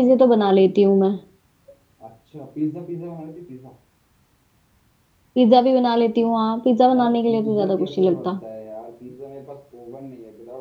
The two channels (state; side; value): identical; both; correlation 1.00